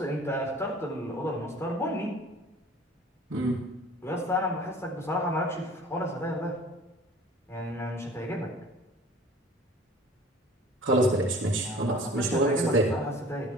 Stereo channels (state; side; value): normal; both; correlation 0.47